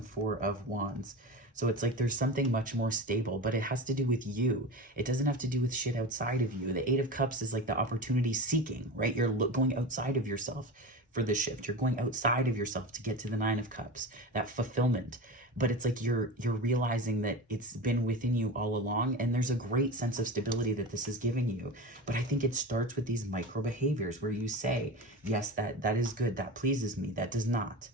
Four of Wands. So it's like there's something much more stable, but it has to do with you. It doesn't have to do with shit outside of you. The Eight of Cups is like the opportunity seeking, right? You're going outside of yourself for the shift. You're going outside of yourself to get to the Nine of Cups, that fulfillment. But it's like you're realizing that it's been within you all along, and there's a great sense of stability that this is giving you. But I think it starts with these micro behaviors where you say, yes, that is good, that pleases me, that does not.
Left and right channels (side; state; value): both; normal; correlation 0.28